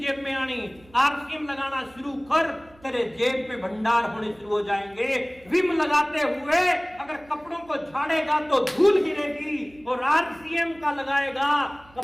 में आनी। आरसीएम लगाना शुरू कर, तेरे जेब पे भंडार होने शुरू हो जाएंगे। विम लगाते हुए अगर कपड़ों को झाड़ेगा तो धूल गिरेगी, और आरसीएम का लगाएगा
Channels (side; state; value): right; noise; hum, 27 dB below the sound